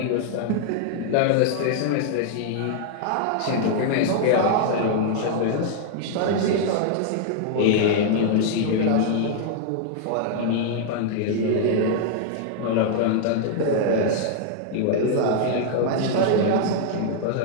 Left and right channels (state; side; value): different; both; correlation -0.01